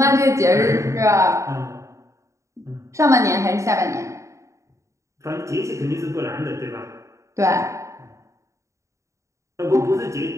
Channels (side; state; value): left; late; 0.15 ms